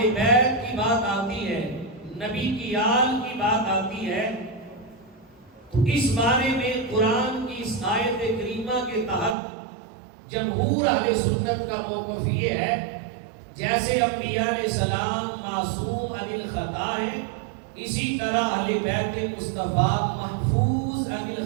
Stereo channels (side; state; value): left; drops out; at 9.3 s